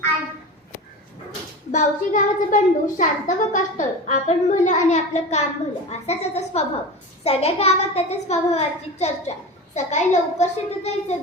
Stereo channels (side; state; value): both; normal; correlation 0.29